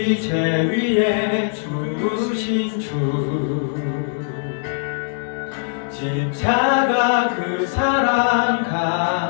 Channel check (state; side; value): silent; right; digital silence